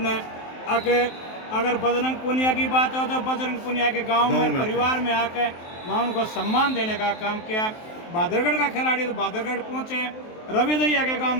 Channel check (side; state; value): right; late; 23 ms